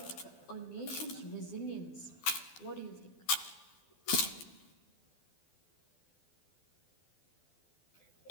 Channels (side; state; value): right; late; 12 ms